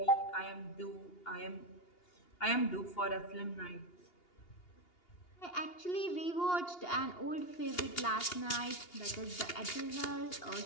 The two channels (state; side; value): late; right; 2.8 ms